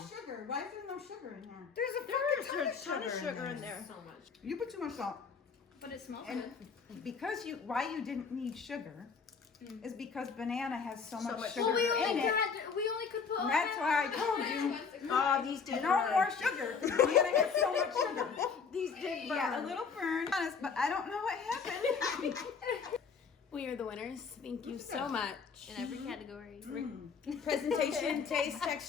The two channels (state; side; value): quieter; right; 5.6 dB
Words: sugar. Why is there no sugar in here? There's a ton of sugar in there. So much. You put too much salt. But it smells And good. because why you didn't need sugar is because banana has so much much sugar Well, we in only it. could put. And that's why I told you Oh, these did no more sugar. Banana has so much sugar. These did burn. Yeah, a little burn. Honest, but I don't know what happened. We are the winners. Yes, thank you so much. In every category. Presentation, taste,